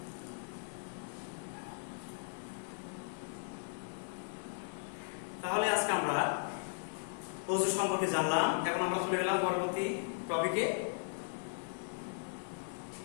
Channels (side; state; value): right; silent; digital silence